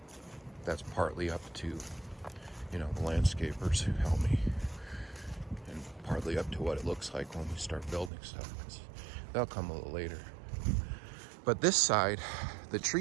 That's partly up to, you know, the landscapers who help me, and partly up to what it looks like when we start building stuff, because they'll come a little later. But this side, the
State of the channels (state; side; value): drops out; left; at 8.1 s